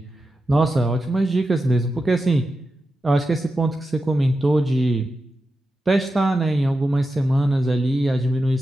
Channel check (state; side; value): normal; both; correlation 0.90